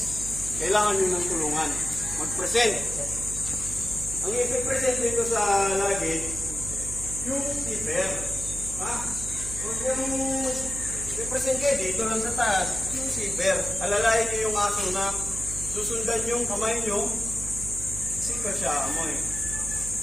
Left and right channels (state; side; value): noise; right; hum, 9 dB below the sound